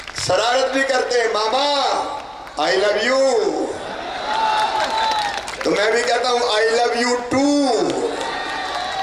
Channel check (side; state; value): both; identical; correlation 1.00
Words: शरारत भी करते हैं, मामा आई लव यू, तो मैं भी कहता हूँ आई लव यू टू।